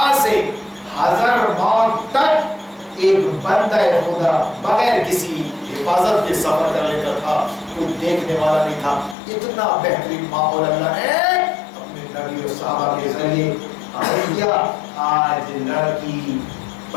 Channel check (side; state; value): right; drops out; at 9.2 s